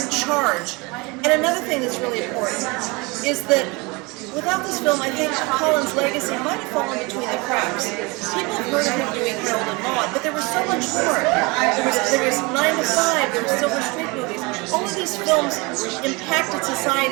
charge. And another thing that's really important is that without this film, I think Colin's legacy might have fallen between the cracks. People have heard of him doing Harold and Maude, but there was so much more. There was 9 to 5, there were Silver Street movies. All of these films impacted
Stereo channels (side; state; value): left; quieter; 26.4 dB